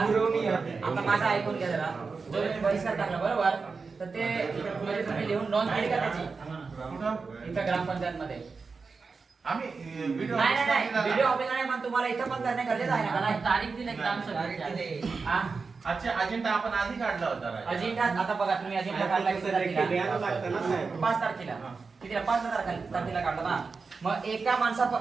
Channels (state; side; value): quieter; left; 4.6 dB